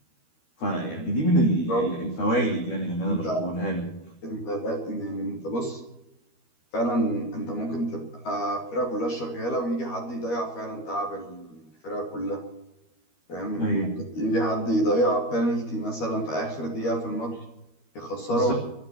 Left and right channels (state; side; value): late; right; 13 ms